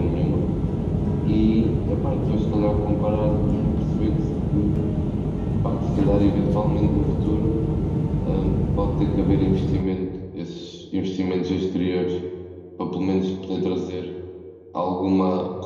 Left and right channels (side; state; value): both; identical; correlation 1.00